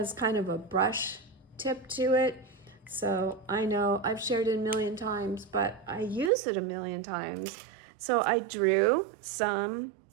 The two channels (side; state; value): left; drops out; at 6.3 s